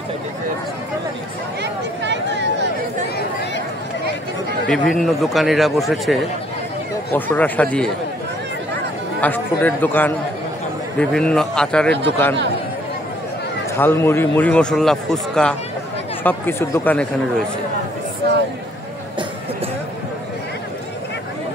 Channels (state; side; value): normal; both; correlation 0.63